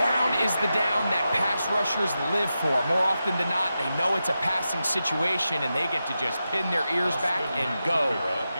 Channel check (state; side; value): inverted; both; correlation -0.90